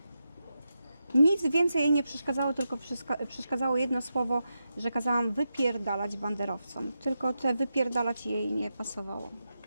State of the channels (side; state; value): both; inverted; correlation -0.88